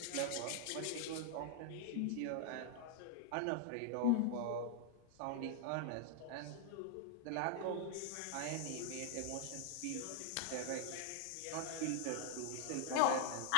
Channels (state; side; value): different; both; correlation 0.00